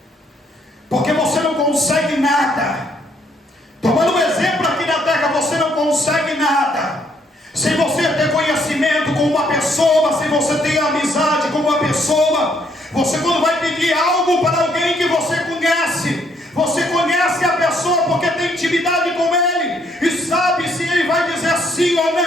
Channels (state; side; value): normal; both; correlation 0.69